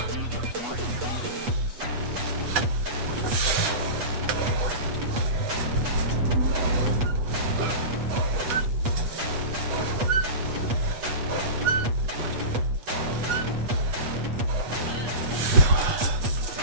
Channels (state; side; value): late; left; 8.3 ms